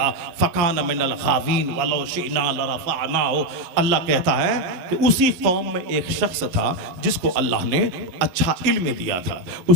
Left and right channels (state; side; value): late; left; 11 ms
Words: फ़कान मिनल गावीन वलौ शिअना लरफ़अनाहु। अल्लाह कहता है कि उसी कौम में एक शख्स था जिसको अल्लाह ने अच्छा इल्म दिया था,